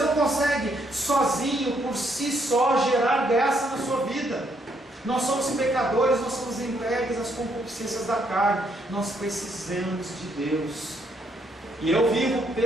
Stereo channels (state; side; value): normal; both; correlation 0.73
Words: consegue sozinho, por si só, gerar graça na sua vida. Nós somos pecadores, nós somos entregues às concupiscências da carne. Nós precisamos de Deus. E eu vivo